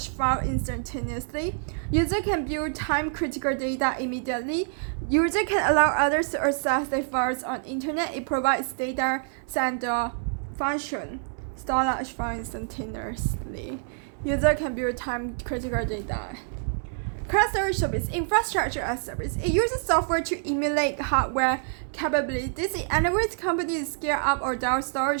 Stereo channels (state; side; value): silent; left; digital silence